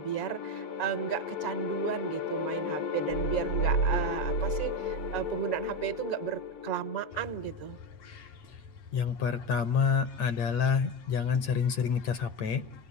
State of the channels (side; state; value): right; late; 8.9 ms